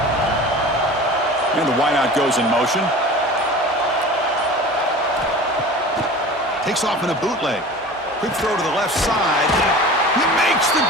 And the wideout goes in motion. Takes off in a bootleg. Quick throw to the left side. He makes the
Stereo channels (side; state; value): both; normal; correlation 0.38